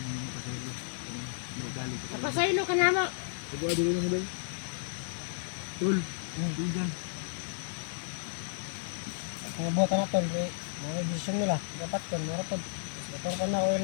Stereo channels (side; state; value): right; silent; 56 dB below the other